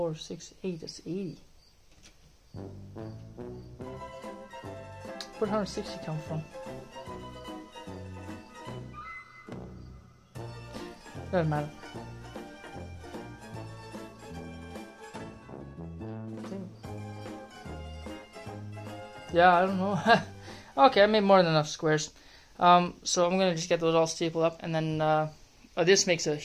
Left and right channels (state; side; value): identical; both; correlation 1.00